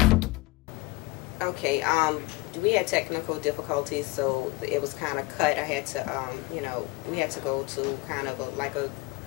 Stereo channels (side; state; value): right; quieter; 22.0 dB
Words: Okay, we had technical difficulties, so it was kind of cut. I had to, we had to go to kind of like a